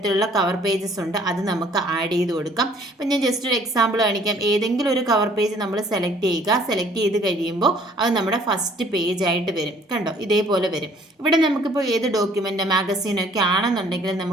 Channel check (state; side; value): normal; both; correlation 0.58